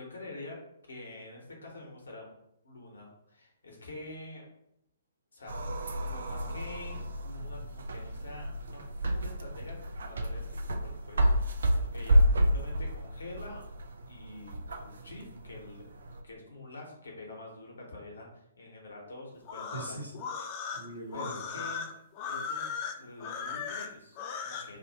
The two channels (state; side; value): inverted; both; correlation -0.78